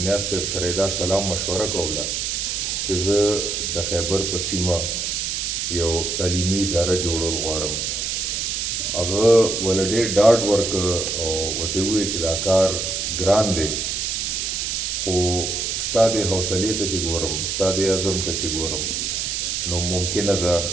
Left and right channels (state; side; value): noise; right; hiss, 1 dB below the sound